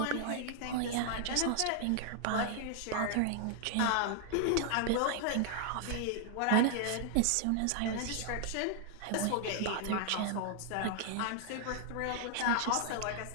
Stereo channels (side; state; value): both; different; correlation 0.00